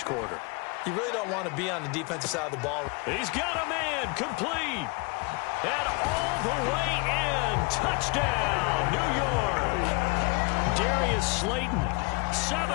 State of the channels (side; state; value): right; quieter; 29.6 dB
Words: quarter. You really don't want to be on the defensive side of the ball. He's got a man, complete. And all the way in. Touchdown, New York. Darius Slayton,